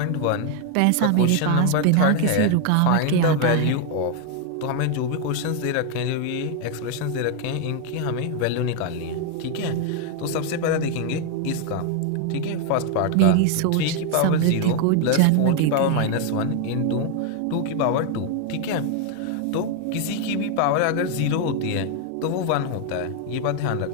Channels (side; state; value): both; different; correlation 0.01